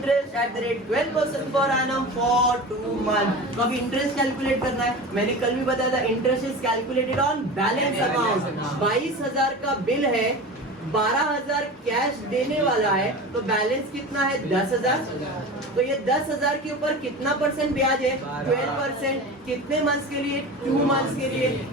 at the rate 12% per annum for 2 months। तो अब इंटरेस्ट कैलकुलेट करना है। मैंने कल भी बताया था, interest is calculated on balance amount. 22,000 का बिल है, 12,000 कैश देने वाला है, तो बैलेंस कितना है 10,000। तो ये 10,000 के ऊपर कितना परसेंट ब्याज है 12%। कितने मंथ्स के लिए 2 मंथ्स के लिए।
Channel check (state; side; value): normal; both; correlation 0.31